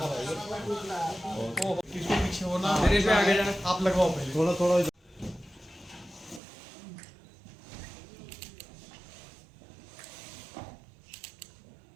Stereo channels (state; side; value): drops out; left; at 6.4 s